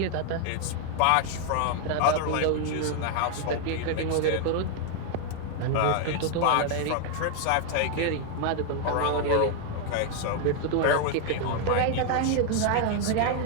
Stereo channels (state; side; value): different; both; correlation 0.00